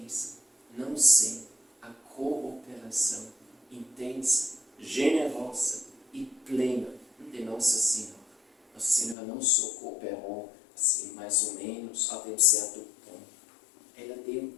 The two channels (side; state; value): right; drops out; at 9.2 s